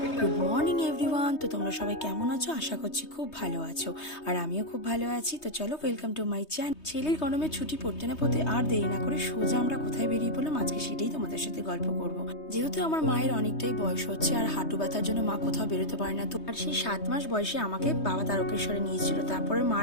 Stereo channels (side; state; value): right; late; 3.2 ms